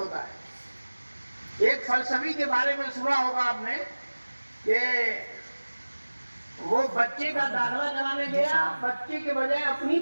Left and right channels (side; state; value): both; inverted; correlation -1.00